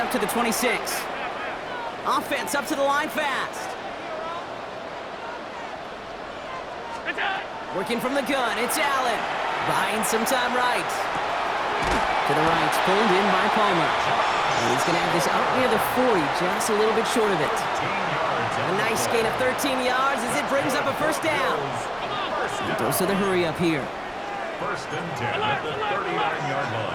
to the 26. Offense up to the line fast. Working from the gun, it's Allen. Buying some time right. To the right, pulled in by Palmer. And he's going to have this up near the 40, just a little bit short of it. A nice gain of 13 yards as it brings up a 1st down. And goes to the hurry up here. 1st and 10 at the 39-yard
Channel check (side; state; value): both; identical; correlation 1.00